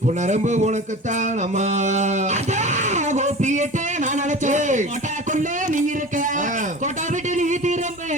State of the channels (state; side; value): normal; both; correlation 0.36